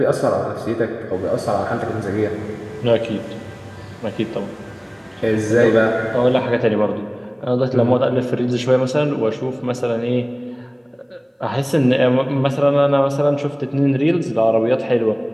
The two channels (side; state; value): both; identical; correlation 1.00